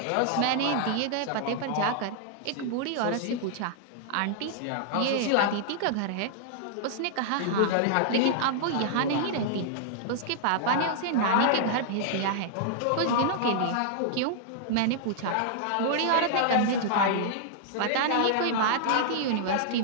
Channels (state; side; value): different; both; correlation -0.01